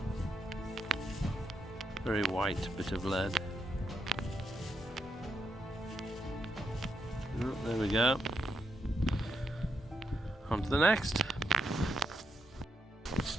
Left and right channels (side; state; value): both; normal; correlation 0.82